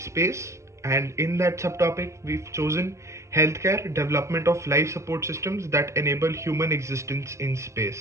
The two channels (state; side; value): late; left; 0.14 ms